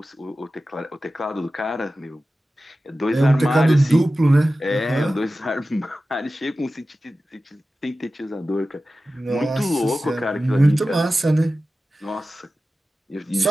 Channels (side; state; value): both; normal; correlation 0.95